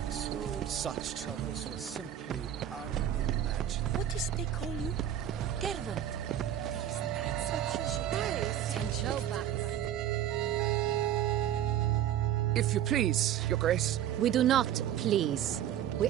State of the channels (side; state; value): left; quieter; 10.9 dB